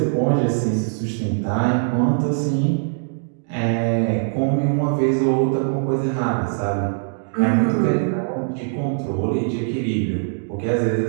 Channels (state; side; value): silent; left; digital silence